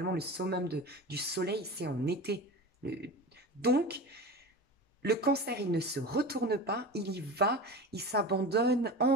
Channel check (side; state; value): both; normal; correlation 0.30